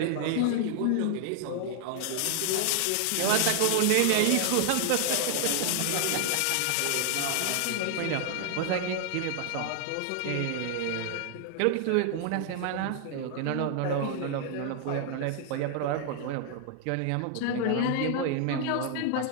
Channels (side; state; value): both; different; correlation 0.00